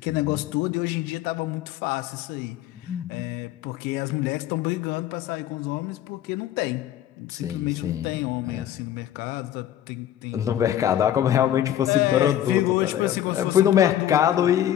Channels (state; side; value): quieter; right; 11.5 dB